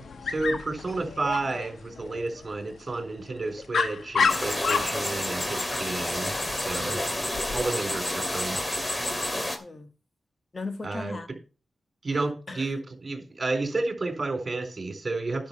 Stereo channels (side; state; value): both; normal; correlation 0.91